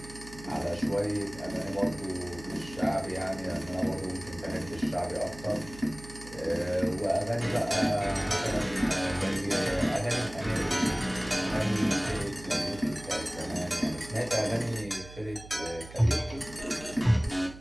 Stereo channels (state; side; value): noise; right; hum, 16 dB below the sound